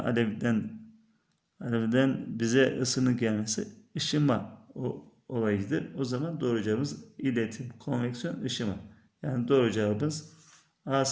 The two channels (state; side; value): identical; both; correlation 1.00